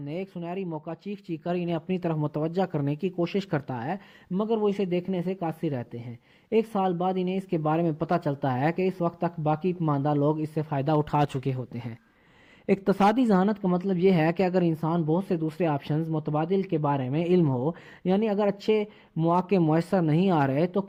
ایک سنہری موقع چیخ چیخ کر انہیں اپنی طرف متوجہ کرنے کی کوشش کرتا ہے، مگر وہ اسے دیکھنے سے قاصر رہتے ہیں۔ ایک سال بعد انہیں اس کے بارے میں پتہ چلتا ہے کہ اس وقت تک باقی ماندہ لوگ اس سے فائدہ اٹھا چکے ہوتے ہیں۔ اقتصادی ذہانت کا مطلب یہ ہے کہ اگر انسان بہت سے دوسرے آپشنز متبادل کے بارے میں علم ہو، یعنی اگر اچھے مواقع میسر نہیں آ رہے تو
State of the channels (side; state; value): both; identical; correlation 1.00